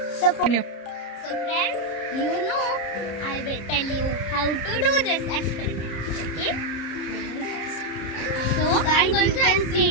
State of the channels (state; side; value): late; right; 30 ms